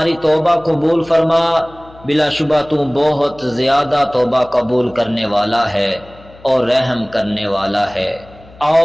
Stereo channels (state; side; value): noise; left; hum, 23 dB below the sound